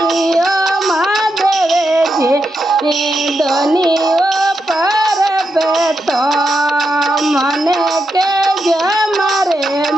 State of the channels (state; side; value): normal; both; correlation 0.85